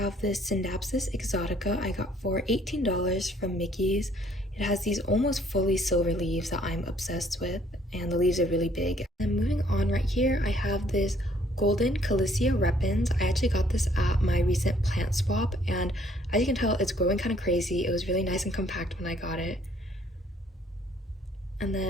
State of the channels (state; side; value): normal; both; correlation 0.63